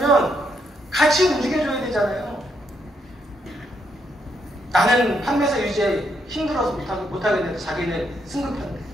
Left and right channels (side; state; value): both; normal; correlation 0.76